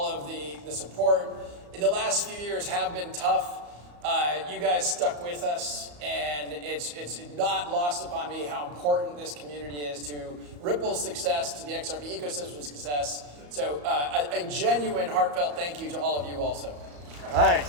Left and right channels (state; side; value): late; left; 34 ms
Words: of the support. The last few years have been tough. You guys stuck with us, and it's not lost upon me how important this community is to Ripple's success, to the XRP ecosystem's success. So a genuine, heartfelt thank you to all of you also.